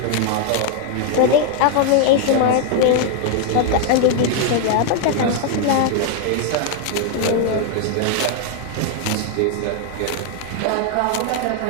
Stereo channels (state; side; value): different; both; correlation 0.00